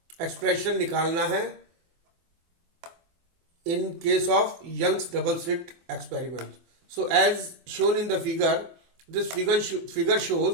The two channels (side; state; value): left; late; 24 ms